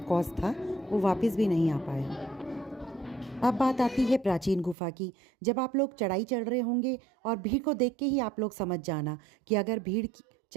कॉस्ट था वो वापस भी नहीं आ पाया। अब बात आती है प्राचीन गुफा की। जब आप लोग चढ़ाई चढ़ रहे होंगे और भीड़ को देख के ही आप लोग समझ जाना कि अगर भीड़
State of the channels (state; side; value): drops out; left; at 4.8 s